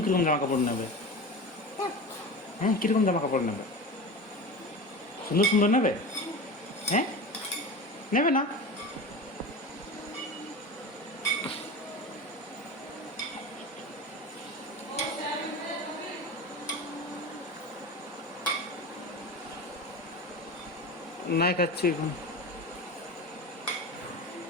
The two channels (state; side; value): normal; both; correlation 0.29